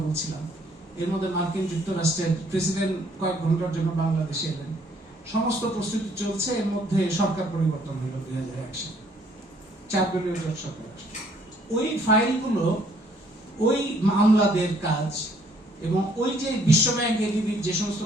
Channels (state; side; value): normal; both; correlation 0.64